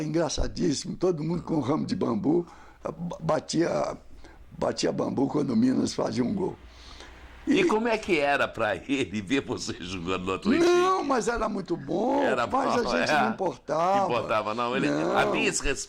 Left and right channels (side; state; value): both; identical; correlation 1.00